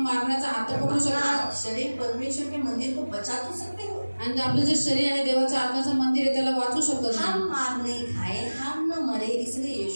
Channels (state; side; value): inverted; both; correlation -1.00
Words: मारण्याचा हात तर पकडू शकता। अपना शरीर परमेश्वर के मंदिर को बचा तो सकते हो। आणि आपलं जे शरीर आहे देवाच्या आत्म्याचं मंदिर आहे त्याला वाचू शकतो। हम मार नहीं खाए, हम न मरे, इसलिए